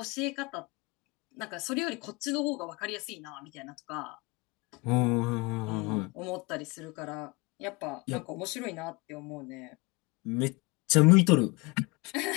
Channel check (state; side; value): quieter; right; 25.8 dB